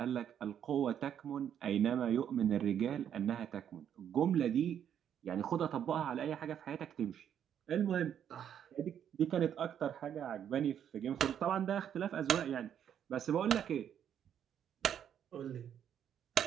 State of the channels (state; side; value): quieter; left; 9.2 dB